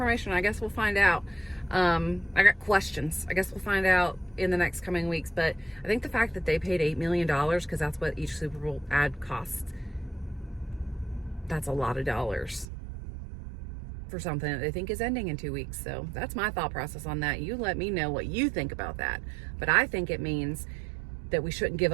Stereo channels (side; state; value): left; drops out; at 12.7 s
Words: I guess we'll find out. I got questions. I guess we'll find out in the next coming weeks. But I think the fact that they paid $8 million, because that's what each Super Bowl ad costs, that's a lot of dollars for something that they think is ending in 2 weeks. So that's my thought process on that. You let me know what you think about that. But I think it means that we shouldn't give